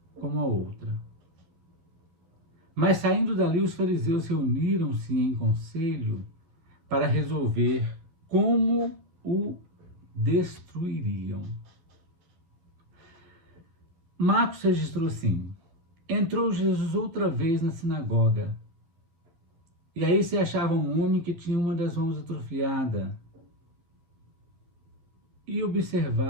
como a outra. Mas saindo dali, os fariseus reuniram-se em conselho para resolver como o destruiriam. Marcos registrou assim: entrou Jesus outra vez na sinagoga, e aí se achava um homem que tinha uma das mãos atrofiada, e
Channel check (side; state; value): left; late; 12 ms